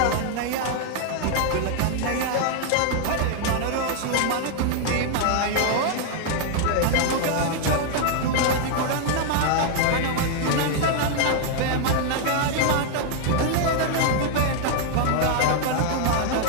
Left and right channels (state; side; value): different; both; correlation 0.00